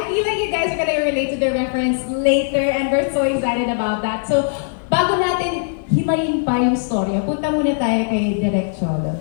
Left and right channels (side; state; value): right; silent; 60 dB below the other